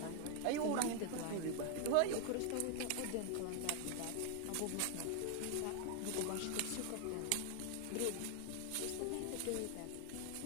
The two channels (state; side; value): different; both; correlation 0.00